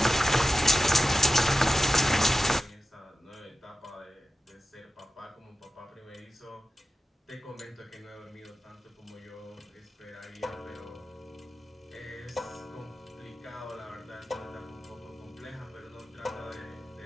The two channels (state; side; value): normal; both; correlation 0.93